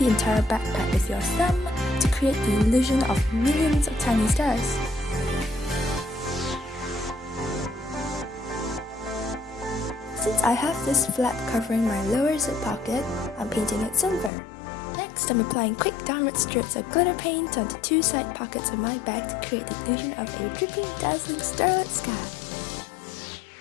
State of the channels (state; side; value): drops out; right; at 14.3 s